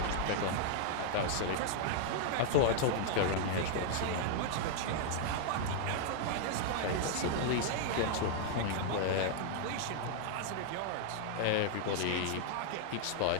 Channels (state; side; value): different; both; correlation -0.01